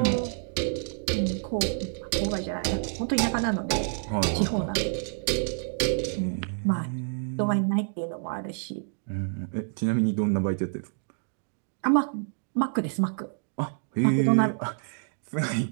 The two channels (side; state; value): left; silent; digital silence